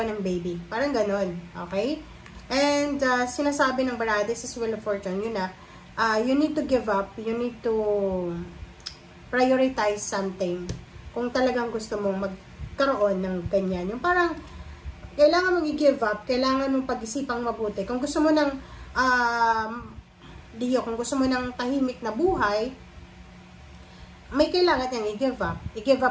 ng baby. Parang ganon. Okay? And sinasabi ng baraha, this is Wheel of Fortune, yun na, you need to give up, you need to prioritize something kung talagang gusto mong magkaroon ng ganyan. Yung parang, kailangan mong i-give up, kailangan mong pag-isipang mabuti. Kung gusto mo ng, kung gusto mo ng tahimik na buhay, may kailangan niyang i-give up. I-give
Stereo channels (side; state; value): both; identical; correlation 1.00